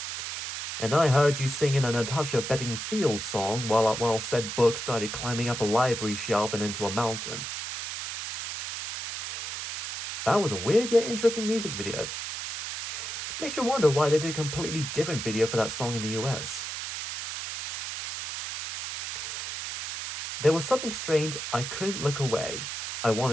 And I heard you singing a Natasha Bedingfield song while said book started climbing up a library shelf and into a mountain. That was a weird yet interesting music video. Makes you wonder why they did a completely different video for that song in the US. There was something strange, I couldn't look away. I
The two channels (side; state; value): right; noise; hiss, 6 dB below the sound